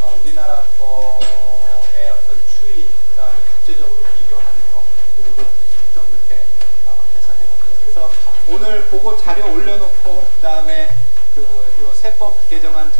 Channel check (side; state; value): both; inverted; correlation -1.00